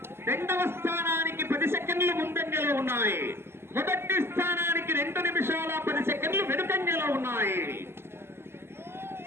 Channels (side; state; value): left; late; 0.12 ms